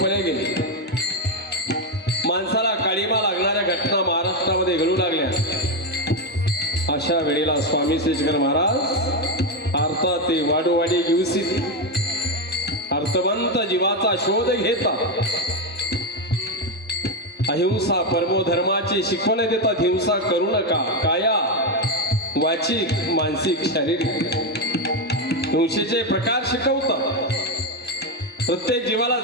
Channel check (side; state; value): both; normal; correlation 0.08